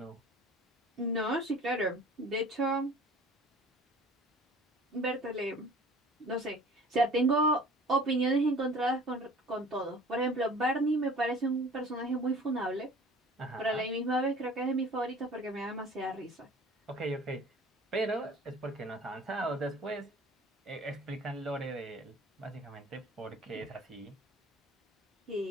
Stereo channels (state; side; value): normal; both; correlation 0.46